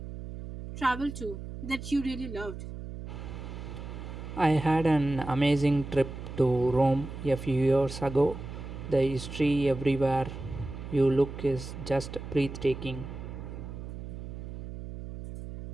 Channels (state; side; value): noise; right; hum, 9 dB below the sound